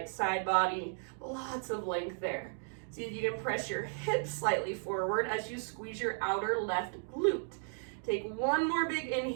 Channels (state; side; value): silent; left; 55 dB below the other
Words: side body, lots of length there. See if you can press your hips slightly forward as you squeeze your outer left glute. Take one more big